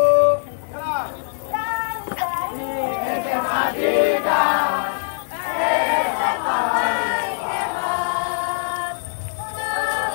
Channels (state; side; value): silent; right; digital silence